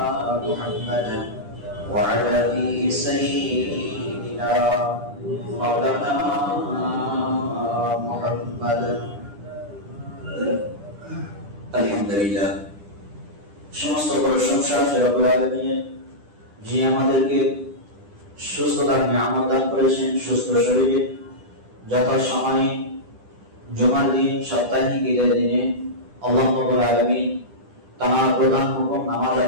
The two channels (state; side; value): late; left; 9.9 ms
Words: محمد وعلى سيدنا مولانا محمد আলহামদুলিল্লাহ। সমস্ত প্রশংসা রব্বুল আলামিনের, যিনি আমাদেরকে সুস্থতার নিয়ামত দান করেছেন। সুস্থ শরীরে যথাসময়ে জুমার দিন সাপ্তাহিক ঈদের দিনে আল্লাহ রাব্বুল আলামিন তার প্রধান হুকুম নামাজ